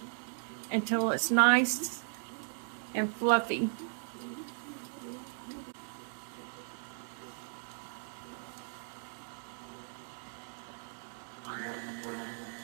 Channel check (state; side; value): silent; left; 54 dB below the other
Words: until it's nice and fluffy.